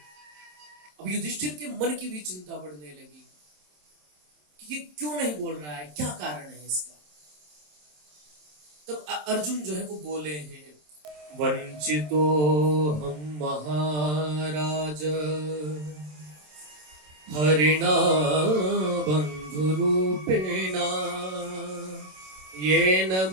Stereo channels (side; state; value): left; late; 27 ms